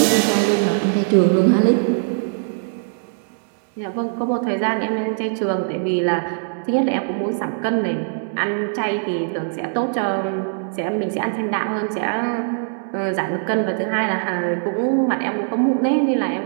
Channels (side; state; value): left; silent; digital silence